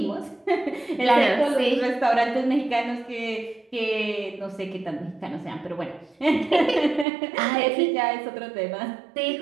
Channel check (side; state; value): left; drops out; at 7.1 s